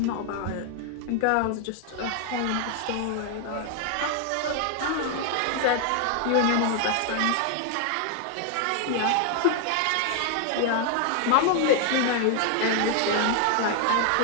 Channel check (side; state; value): both; different; correlation 0.00